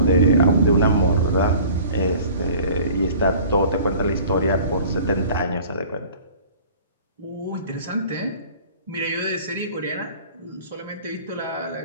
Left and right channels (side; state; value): both; inverted; correlation -0.46